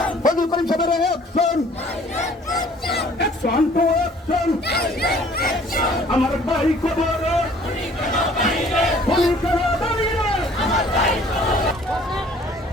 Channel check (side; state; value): both; normal; correlation 0.55